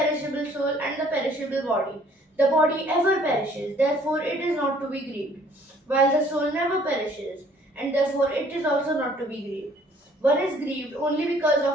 soul and the perishable body. The body ever perishes, therefore it is not to be grieved, while the soul never perishes, and therefore it is also not to be grieved. One is grieved only because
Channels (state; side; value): normal; both; correlation 0.59